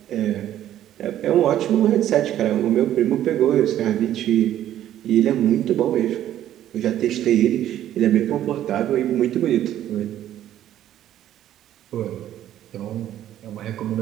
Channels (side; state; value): left; quieter; 12.0 dB